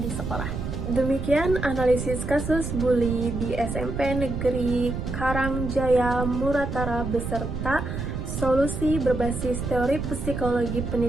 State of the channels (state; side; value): noise; right; rumble, 4 dB below the sound